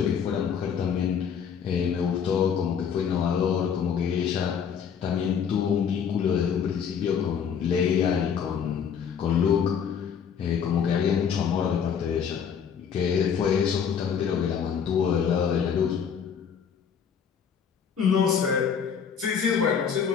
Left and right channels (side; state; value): right; quieter; 7.4 dB